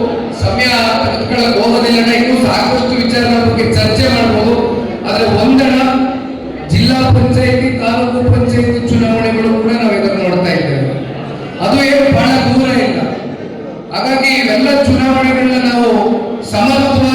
ಸಮಯ ತೆಗೆದುಕೊಳ್ಳಕ್ಕೆ ಹೋಗೋದಿಲ್ಲ. ಇನ್ನೂ ಸಾಕಷ್ಟು ವಿಚಾರಗಳ ಬಗ್ಗೆ ಚರ್ಚೆ ಮಾಡ್ಬೋದು. ಆದ್ರೆ ಒಂದಣ ಜಿಲ್ಲಾ ಪಂಚಾಯತಿ, ತಾಲೂಕು ಪಂಚಾಯತಿ ಚುನಾವಣೆಗಳು ಕೂಡ ನಾವು ಇದನ್ನು ನೋಡ್ತಾ ಇದ್ದೇವೆ. ಅದು ಏನು ಬಹಳ ದೂರ ಇಲ್ಲ. ಹಾಗಾಗಿ ಇವೆಲ್ಲ ಚುನಾವಣೆಗಳನ್ನ ನಾವು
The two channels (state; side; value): identical; both; correlation 1.00